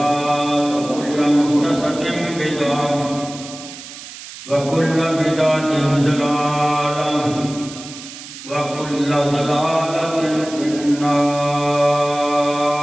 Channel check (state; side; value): noise; right; hiss, 14 dB below the sound